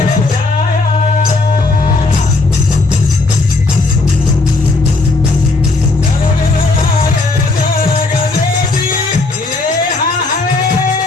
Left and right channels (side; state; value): right; quieter; 3.4 dB